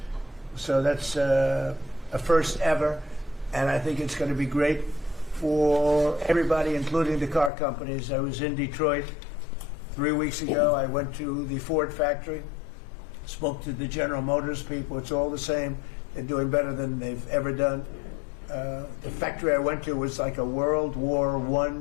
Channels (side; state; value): right; drops out; at 7.5 s